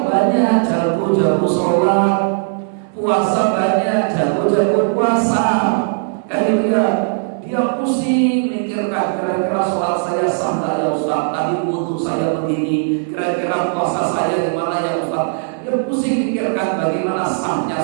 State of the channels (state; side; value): silent; left; 68 dB below the other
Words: banyak, jago sholat, puasa banyak, jago puasa. Kan dia pusing mikirkan kira-kira sholat saya sah nggak ya Ustaz, tadi wudu saya begini, kira-kira puasa saya gimana ya Ustaz. Dia pusing mikirkan bagaimana sahnya